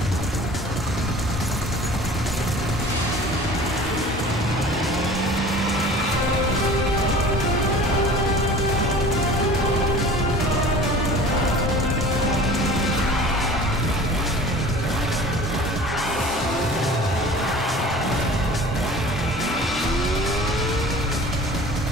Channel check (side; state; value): both; normal; correlation 0.43